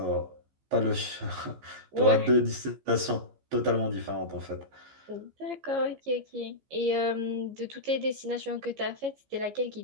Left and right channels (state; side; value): late; left; 15 ms